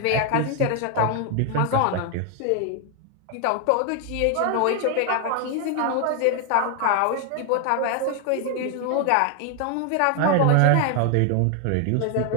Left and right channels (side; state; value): both; different; correlation 0.00